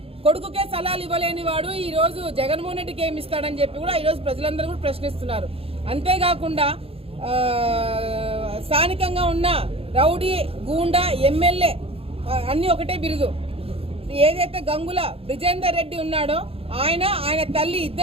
కొడుకుకే సలహాలు ఇవ్వలేని వాడు ఈ రోజు జగన్మోహన్ రెడ్డికి ఏమి ఇస్తాడని చెప్పి కూడా ఈరోజు ప్రజలందరూ కూడా ప్రశ్నిస్తున్నారు. అంతేకాకుండా స్థానికంగా ఉన్న రౌడీ, గూండా, ఎమ్మెల్యే అన్నీ ఒకటే బిరుదు. ఏదైతే గంగుల బ్రిజేందర్ రెడ్డి ఉన్నాడో ఆయన తల్లి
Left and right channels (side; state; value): left; late; 0.28 ms